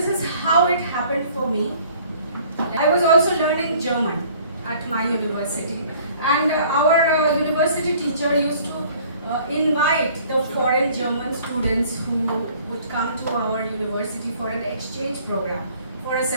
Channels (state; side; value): inverted; both; correlation -0.55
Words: is how it happened for me. I was also learning German at my university, and our university teacher used to invite the foreign German students who would come to our university for an exchange program for a